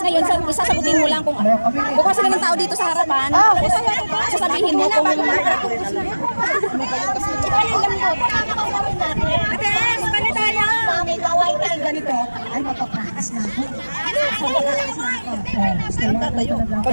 ngayon, isasagutin mo lang kung kukuha sila ng tao dito sa harapan. Sasabihin mo kung May kaway tayo ganito. Ay, mapapakakas na ako. ikaw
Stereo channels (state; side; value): inverted; both; correlation -1.00